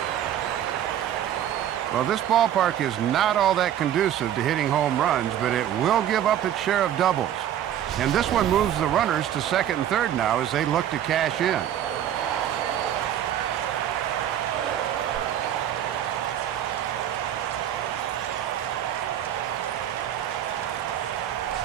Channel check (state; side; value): quieter; left; 10.8 dB